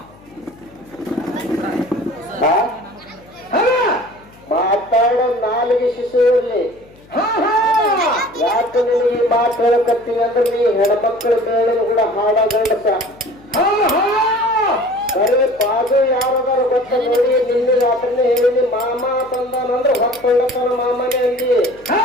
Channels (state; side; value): noise; left; hum, 26 dB below the sound